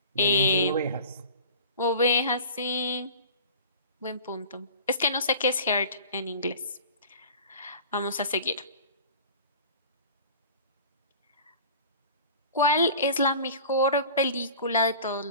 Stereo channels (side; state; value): both; inverted; correlation -0.41